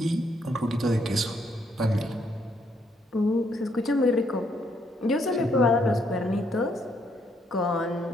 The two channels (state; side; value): normal; both; correlation 0.72